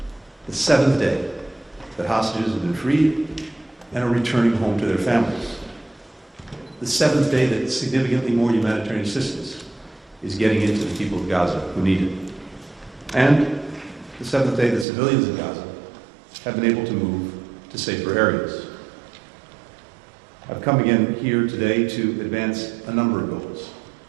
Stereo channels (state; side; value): drops out; left; at 14.9 s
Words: The seventh day that hostages have been freed and are returning home to their families. The seventh day that significantly more humanitarian assistance is getting into the people of Gaza who need it. And the seventh day that civilians in Gaza have been able to move to safer areas. I've come again here today to advance a number of goals.